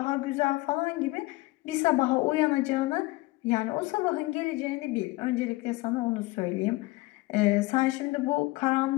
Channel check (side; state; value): right; quieter; 21.2 dB